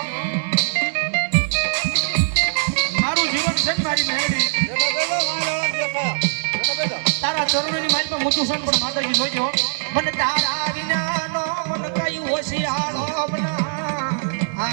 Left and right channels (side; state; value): left; silent; digital silence